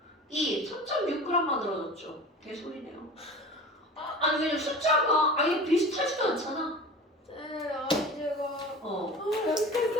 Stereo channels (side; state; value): both; normal; correlation 0.36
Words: 2, 3.6g 만들어졌죠. 개소리네요. 아니 왜냐면 숫자가 아예 비슷하지도 않잖아. 네, 아니 제가